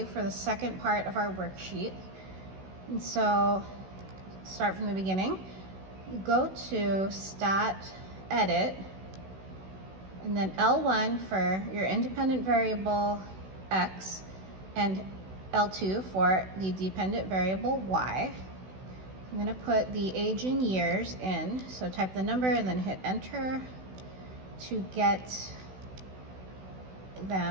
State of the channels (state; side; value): late; left; 16 ms